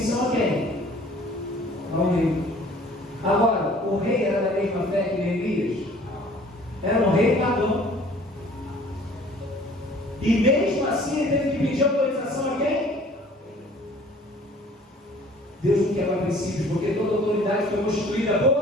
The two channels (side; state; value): both; normal; correlation 0.52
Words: a quem? Ao rei. Agora, o rei era da mesma fé que Neemias? Era um rei pagão. E mesmo assim ele teve que pedir autorização a quem? Deus não quebra princípios, porque toda autoridade foi constituída